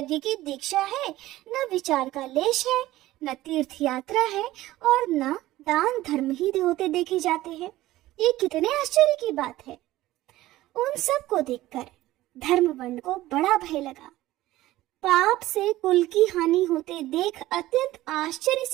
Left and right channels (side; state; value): left; quieter; 16.2 dB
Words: की दीक्षा है, न विचार का लेश है, न तीर्थ यात्रा है और न दान धर्म ही होते देखे जाते हैं। ये कितने आश्चर्य की बात है। उन सब को देखकर धर्मवंड को बड़ा भय लगा। पाप से कुल की हानि होते देख अत्यंत आश्चर्य